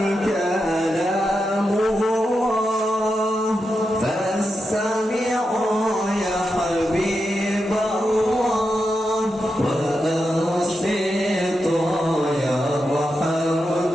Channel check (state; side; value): normal; both; correlation 0.87